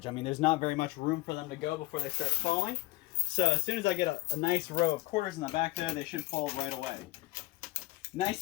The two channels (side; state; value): right; quieter; 19.8 dB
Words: I mean, there's not very much room for them to go before they start falling. So as soon as I get a nice row of quarters in the back there, they should fall right away.